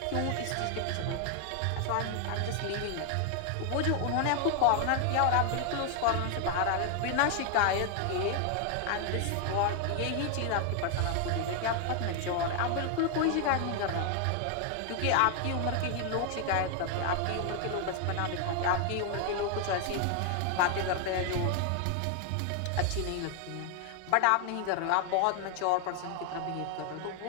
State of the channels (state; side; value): different; both; correlation 0.00